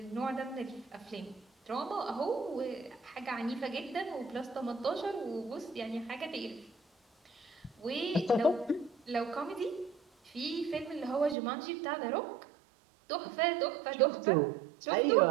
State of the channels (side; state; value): left; drops out; at 11.4 s